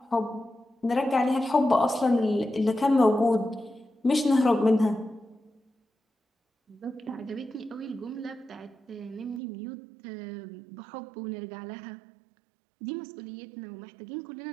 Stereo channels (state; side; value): drops out; left; at 9.4 s